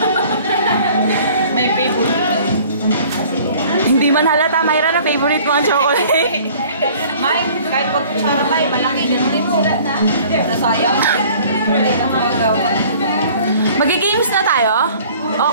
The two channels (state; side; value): inverted; both; correlation -0.51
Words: May favorite. Hindi man halata, Myra, na favorite mo ang chocolate. May, kahit pag kutsara may, malaki. Ganun din sila na. Nasayang. Mag-games na tayo? O,